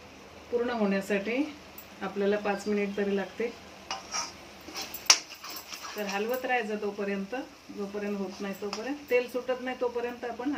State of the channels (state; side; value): identical; both; correlation 1.00